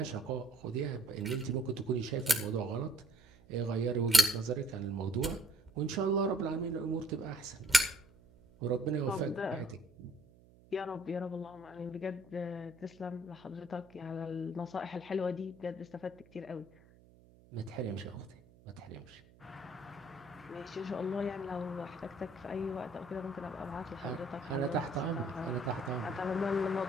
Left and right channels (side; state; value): right; noise; hum, 25 dB below the sound